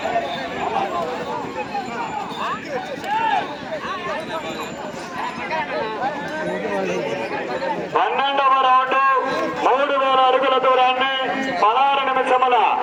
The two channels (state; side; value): identical; both; correlation 1.00